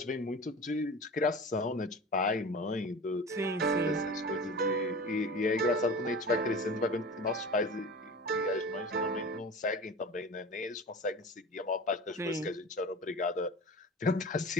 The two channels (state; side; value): normal; both; correlation 0.35